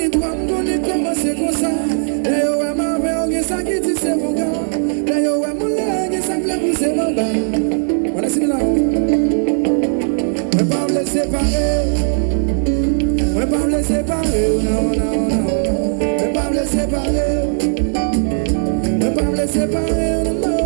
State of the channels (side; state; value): left; silent; 63 dB below the other